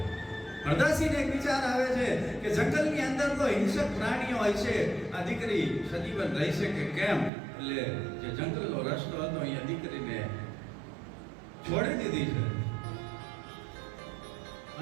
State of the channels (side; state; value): left; drops out; at 7.3 s